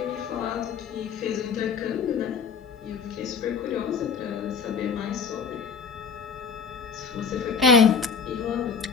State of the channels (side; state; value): right; quieter; 5.9 dB